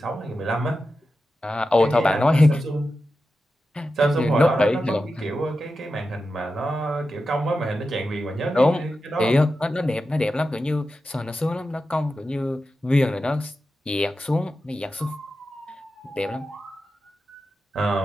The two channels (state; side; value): normal; both; correlation 0.91